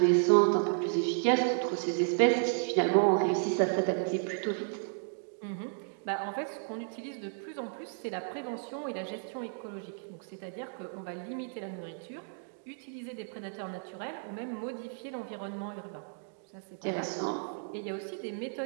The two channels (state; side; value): silent; left; digital silence